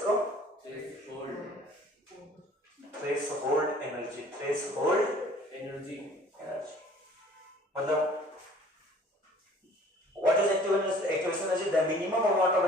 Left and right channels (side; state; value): both; normal; correlation 0.52